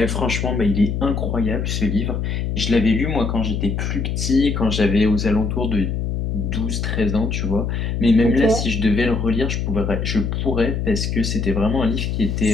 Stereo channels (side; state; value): left; noise; hum, 1 dB below the sound